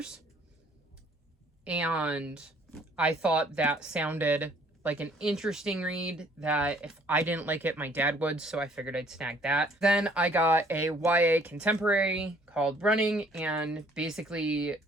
And I thought that sounded like an interesting read that if I didn't like it, my dad would, so I figured I'd snag that. Then I got a YA contemporary called Running, and basically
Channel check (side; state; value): both; normal; correlation 0.59